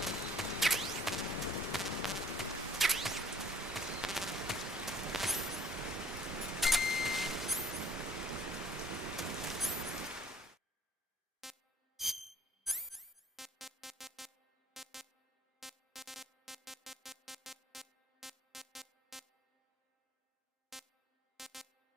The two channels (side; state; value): both; normal; correlation 0.53